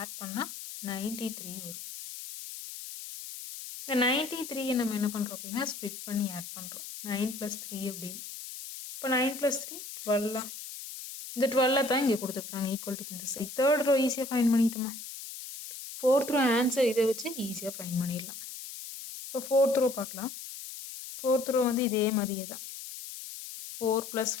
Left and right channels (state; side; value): noise; left; hiss, 10 dB below the sound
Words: ஆட் பண்ணால் 93 வரும். இந்த 93ஐ நம்ம என்ன பண்ணுறோம் அப்படின்னா ஸ்ப்ளிட் பண்ணி ஆட் பண்ணுறோம். 9 + 3 அப்படின்னு. இப்போ 9 + 3 12. இந்த 12 தான் இங்கே கொடுத்துருக்குறாங்க ஈக்குவல் டு இந்த சைட். தேர்ட் ரோ ஈஸியாக ஃபைண்ட் பண்ணிட்டோமா? ஃபோர்த் ரோ ஆன்சர் இதை வச்சு ஈஸியாக ஃபைண்ட் பண்ணிடலாம். இப்போ ஃபோர்த் ரோ பார்க்கலாம். ஃபோர்த் ரோ இதே மாதிரியே தான். 4 +